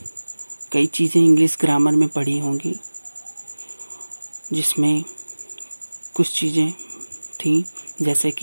कई चीज़ें इंग्लिश ग्रामर में पढ़ी होंगी, जिसमें कुछ चीज़ें थी जैसे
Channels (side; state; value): both; inverted; correlation -1.00